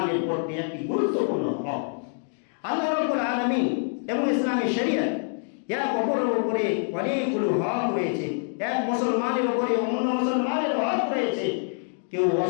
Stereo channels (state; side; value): silent; right; 61 dB below the other